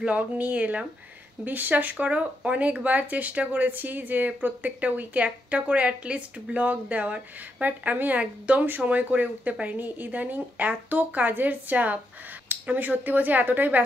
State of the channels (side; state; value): both; normal; correlation 0.81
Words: নিয়ে এলাম। বিশ্বাস করো, অনেকবার চেষ্টা করেছি যে প্রত্যেকটা উইকে একটা করে অ্যাটলিস্ট ব্লগ দেওয়ার, বাট আমি একদম সময় করে উঠতে পারিনি। ইদানিং এত কাজের চাপ, আমি সত্যি বলছি এতটাই